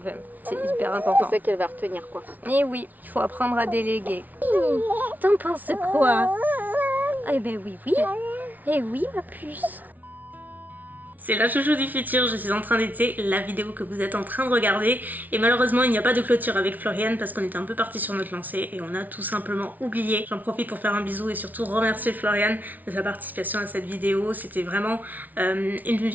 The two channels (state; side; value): late; left; 0.078 ms